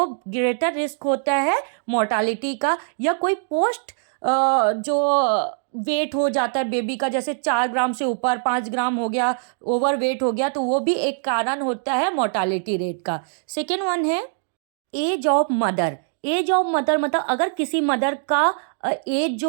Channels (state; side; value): silent; left; digital silence